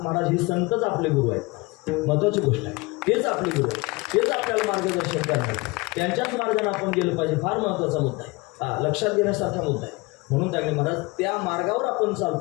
महाराज हे संतच आपले गुरु आहेत. महत्त्वाची गोष्ट आहे. तेच आपले गुरु आहेत. तेच आपल्याला मार्गदर्शन करणार. त्यांच्याच मार्गाने आपण गेलं पाहिजे. फार महत्त्वाचा मुद्दा आहे. लक्षात घेण्यासारखा मुद्दा आहे. म्हणून त्यांनी महाराज त्या मार्गावर आपण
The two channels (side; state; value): right; quieter; 24.7 dB